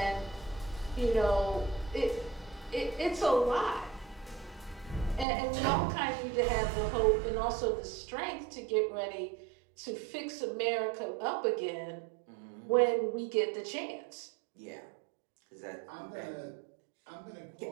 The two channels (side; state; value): left; drops out; at 5.2 s